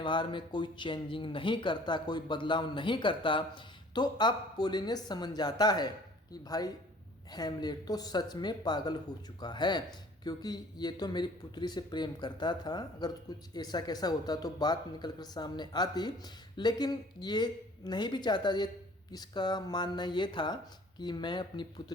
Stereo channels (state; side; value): normal; both; correlation 0.52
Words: में कोई चेंजिंग नहीं करता, कोई बदलाव नहीं करता। तो अब पोलिनियस समझ जाता है कि भाई हैमलेट तो सच में पागल हो चुका है, क्योंकि ये तो मेरी पुत्री से प्रेम करता था। अगर कुछ ऐसा कैसा होता तो बात निकल कर सामने आती, लेकिन ये नहीं भी चाहता। ये इसका मानना ये था कि मैं अपनी